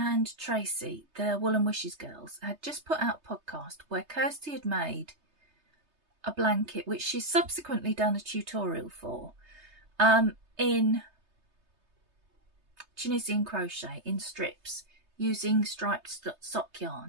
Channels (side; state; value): left; late; 3.3 ms